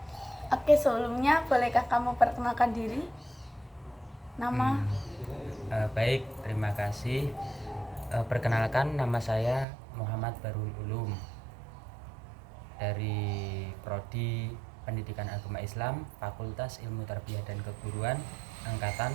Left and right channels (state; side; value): drops out; left; at 9.7 s